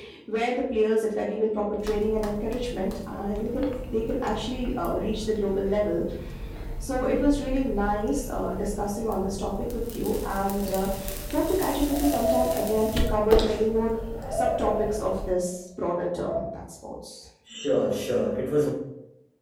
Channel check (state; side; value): identical; both; correlation 1.00